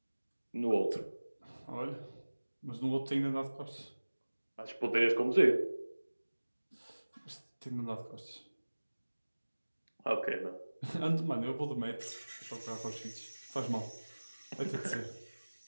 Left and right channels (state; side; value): inverted; both; correlation -1.00